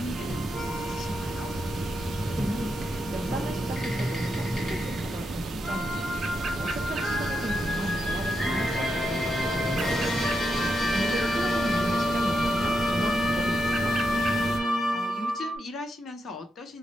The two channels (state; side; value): normal; both; correlation 0.84